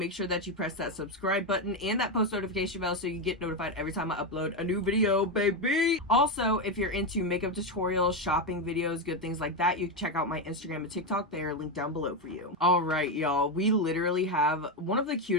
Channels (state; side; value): normal; both; correlation 0.09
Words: sure that you press that subscribe button and that post notification bell so you get notified every time I upload a new video, baby. Also, if you're into makeup tutorials, shopping videos, good things like that, you can check out my Instagram and TikTok. They are linked down below for you. All right, y'all, we literally have one of the